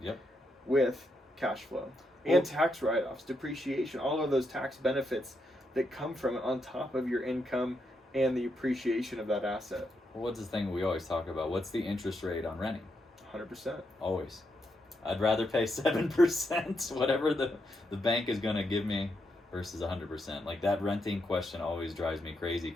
with cash flow. And tax write-offs, depreciation, all of those tax benefits that come from it on top of your income and the appreciation of that asset. Well, what's the thing we always talk about? What's the interest rate on renting? 100%. Always. I'd rather pay 7%, whatever the bank is going to give me, versus 100%. Like, that renting question always drives me crazy,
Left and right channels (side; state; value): both; normal; correlation 0.81